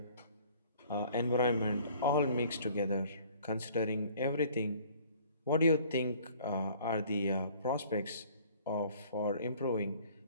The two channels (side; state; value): both; inverted; correlation -0.54